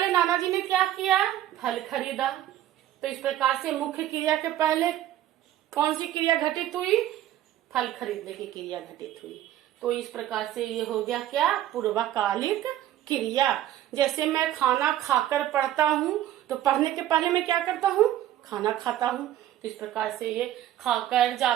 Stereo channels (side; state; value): left; quieter; 12.6 dB